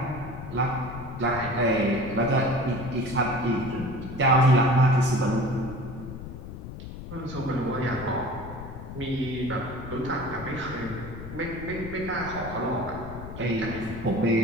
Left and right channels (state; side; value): noise; left; rumble, 11 dB below the sound